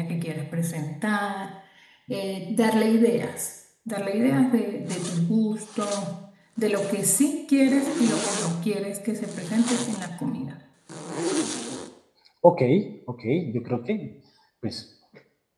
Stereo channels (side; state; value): both; identical; correlation 1.00